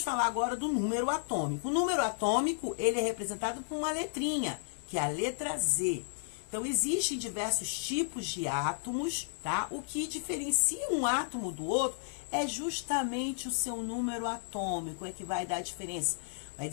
falar agora do número atômico. O número atômico, ele é representado por uma letrinha, que é a letra Z. Então, existem diversos tipos de átomos, tá? O que diferencia um átomo do outro é justamente o seu número atômico, é que vai dar a diferença. Vai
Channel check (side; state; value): right; silent; digital silence